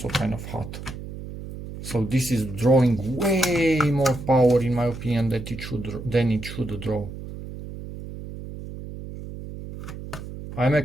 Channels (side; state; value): right; noise; hum, 11 dB below the sound